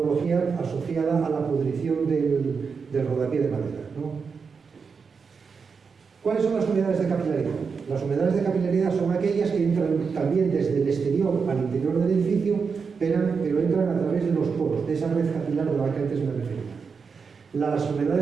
asociada a la pudrición del rodapié de madera, ¿no? ¿Cuáles son las humedades de capilaridad? Las humedades de capilaridad son aquellas que entran también desde el exterior al interior del edificio, pero entran a través de los poros, de esa red capilar de la que antes me refería. Las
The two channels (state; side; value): quieter; left; 5.5 dB